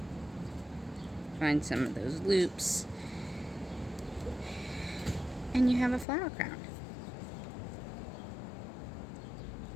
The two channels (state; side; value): drops out; right; at 6.1 s